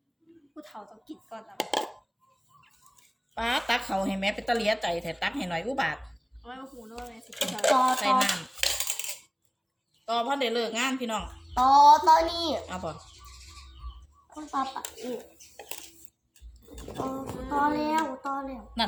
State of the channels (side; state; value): both; identical; correlation 1.00